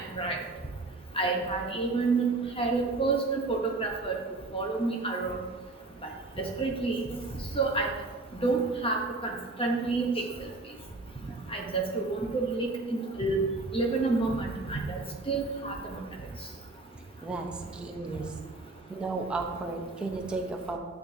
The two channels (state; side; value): quieter; left; 3.2 dB